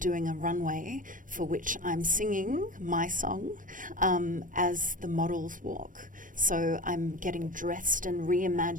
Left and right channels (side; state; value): left; late; 0.38 ms